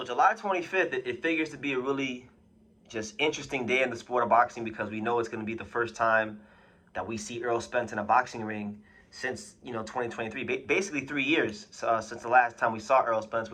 July 25th, it figures to be a really just interesting day in the sport of boxing because we know it's going to be the first time that we see Errol Spence in a boxing ring since 2023, basically 3 years since the last time we saw Errol Spence,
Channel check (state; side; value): identical; both; correlation 1.00